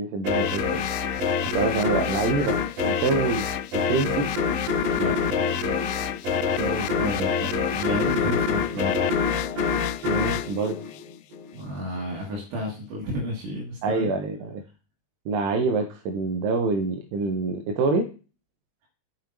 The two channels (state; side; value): late; left; 20 ms